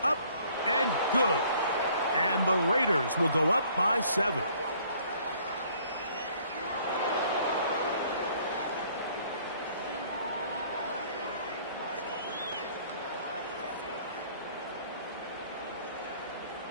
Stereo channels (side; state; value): both; inverted; correlation -0.59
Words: up and good. And the Raiders will go up by 7.